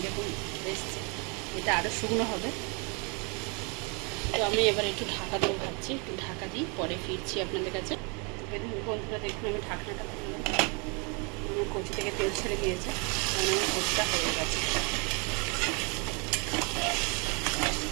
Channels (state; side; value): quieter; left; 32.8 dB